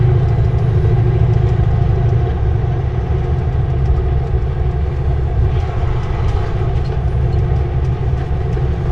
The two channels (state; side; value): identical; both; correlation 1.00